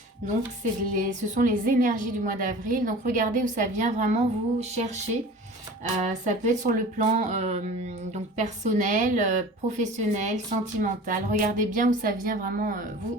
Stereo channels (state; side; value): normal; both; correlation 0.40